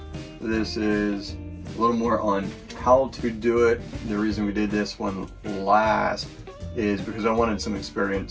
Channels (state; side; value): identical; both; correlation 1.00